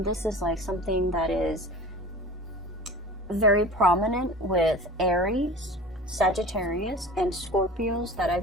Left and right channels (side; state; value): both; normal; correlation 0.38